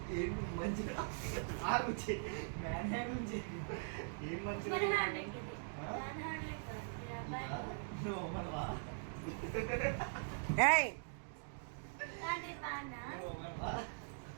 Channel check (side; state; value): left; silent; digital silence